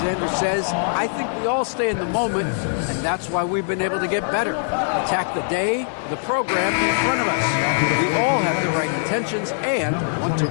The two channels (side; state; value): right; silent; digital silence